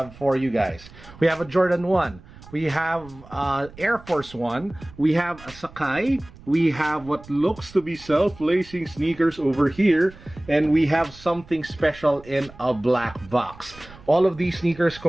for you guys. We have a Jordan 1. We have Air Force 1. We have a Sakai. We have what looks to be self-lacing sneakers over here. And we have something special in a black box. All of these sneakers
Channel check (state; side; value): noise; right; rumble, 20 dB below the sound